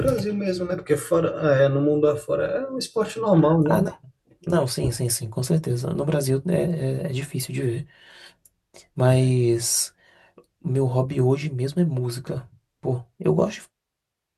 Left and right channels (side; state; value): both; identical; correlation 1.00